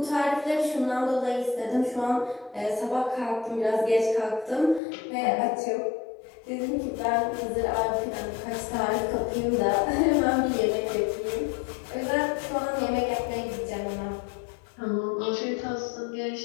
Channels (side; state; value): right; drops out; at 4.8 s